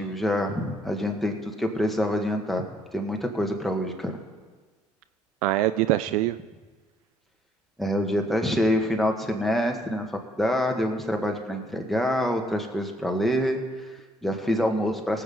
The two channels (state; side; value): normal; both; correlation 0.66